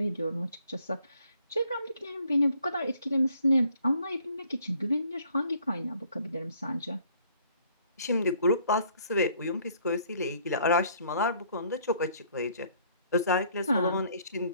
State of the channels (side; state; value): both; inverted; correlation -0.62